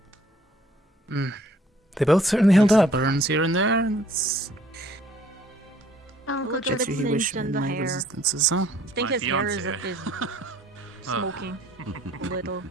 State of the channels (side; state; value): both; normal; correlation 0.59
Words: They both certainly held up. Burns here and there. It's... Look Get at the you, he wish cinch and the my hair. resistances, huh? I think his hair is smoking a little.